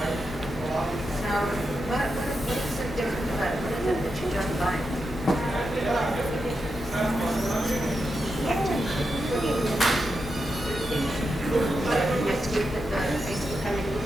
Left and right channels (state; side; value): normal; both; correlation 0.87